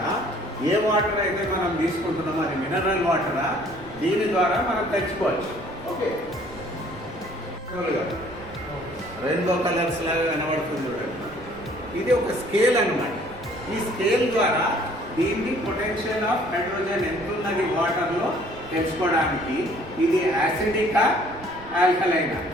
ఏ వాటర్ అయితే మనం తీసుకుంటున్నామో అది మినరల్ వాటరా, దీని ద్వారా మనం తెచ్చుకోవచ్చు. ఓకే, రెయిన్బో కలర్స్ లాగా కనబడుతుంది చూడండి. ఇది ఒక స్కేల్ అన్నమాట. ఈ స్కేల్ ద్వారా దీన్ని పొటెన్షియల్ ఆఫ్ హైడ్రోజన్ ఎంత ఉన్నది వాటర్లో తెలుసుకోవడానికి ఇది యాసిడికా ఆల్కలైనా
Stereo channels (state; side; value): noise; right; rumble, 20 dB below the sound